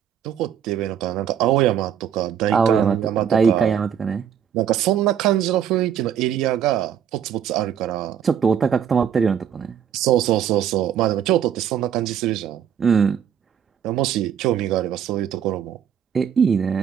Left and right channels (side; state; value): left; quieter; 8.7 dB